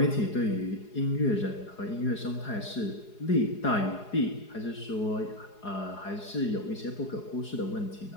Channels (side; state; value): right; late; 4.8 ms